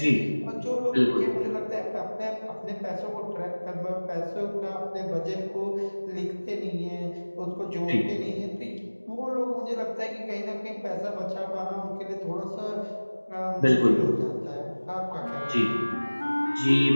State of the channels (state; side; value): inverted; both; correlation -1.00